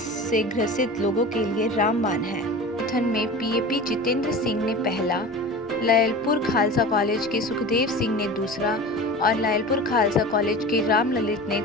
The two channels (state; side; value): normal; both; correlation 0.34